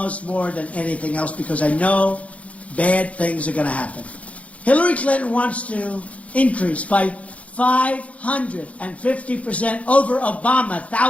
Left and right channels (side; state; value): right; late; 0.065 ms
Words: more than anything else because I know bad things are going to happen. Hillary Clinton wants to increase by 550% over Obama,